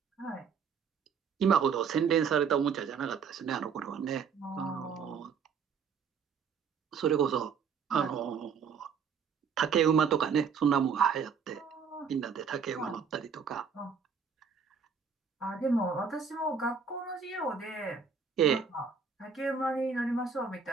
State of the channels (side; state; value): left; quieter; 6.2 dB